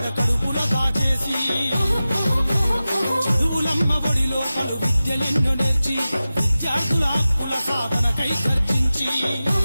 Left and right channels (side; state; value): both; inverted; correlation -0.95